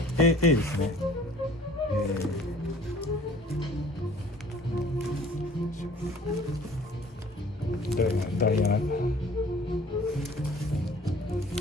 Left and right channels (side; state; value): both; normal; correlation 0.51